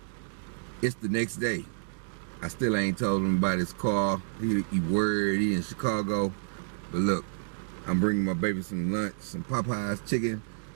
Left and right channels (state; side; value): silent; left; digital silence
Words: It's the next day. I still ain't told him about his car. He worried, he in Chicago. But look, I'm bringing my baby some lunch, some Popeyes chicken,